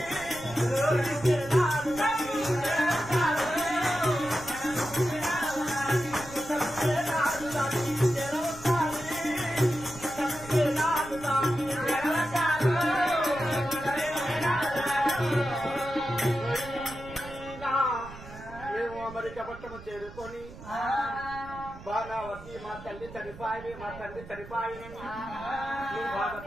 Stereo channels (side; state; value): right; noise; rumble, 16 dB below the sound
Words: పట్టణం చేరుకొని బాణావతి మా తల్లి చనిపాయి, మా తండ్రి చనిపాయి, నువ్వు